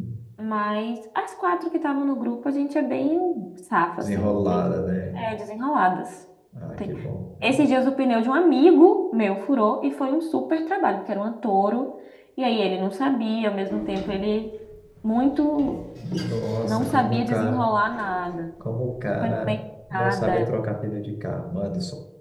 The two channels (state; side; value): identical; both; correlation 1.00